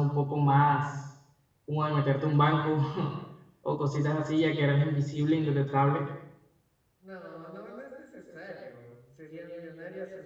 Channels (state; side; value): identical; both; correlation 1.00